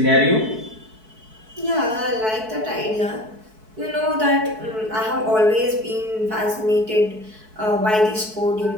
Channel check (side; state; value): left; late; 4.6 ms